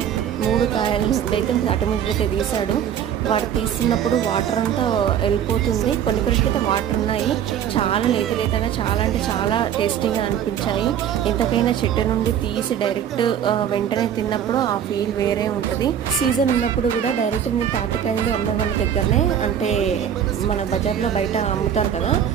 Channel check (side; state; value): left; quieter; 9.3 dB